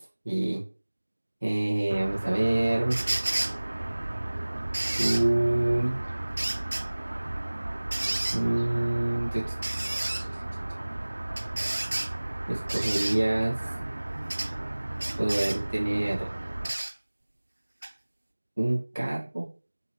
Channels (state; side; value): inverted; both; correlation -1.00